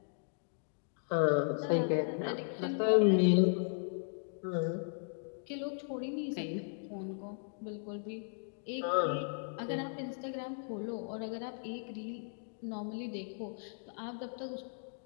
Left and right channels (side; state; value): right; silent; digital silence